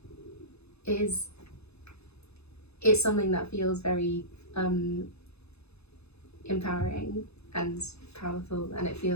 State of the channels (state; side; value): late; right; 0.79 ms